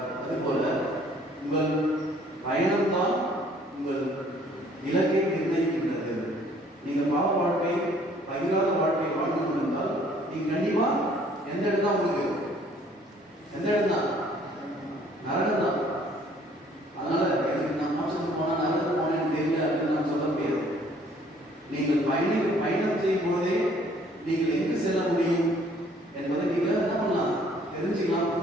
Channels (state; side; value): normal; both; correlation 0.59